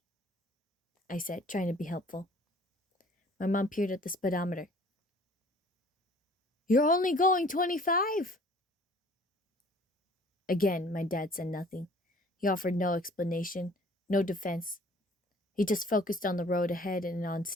I said, trying to be helpful. My mom peered at the speedometer. "You're only going 25. Again, my dad said nothing. He offered no explanation, no defense. He just focused on the road ahead and on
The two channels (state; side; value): normal; both; correlation 0.53